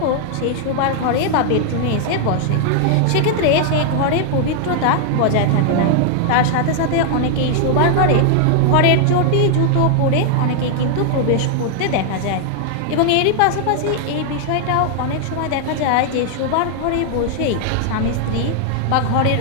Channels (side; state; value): both; different; correlation 0.00